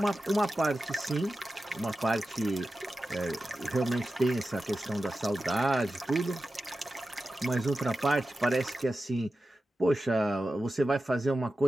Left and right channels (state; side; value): normal; both; correlation 0.93